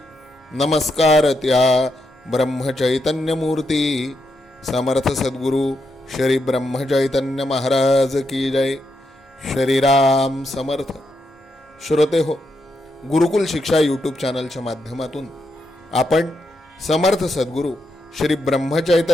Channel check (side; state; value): both; normal; correlation 0.82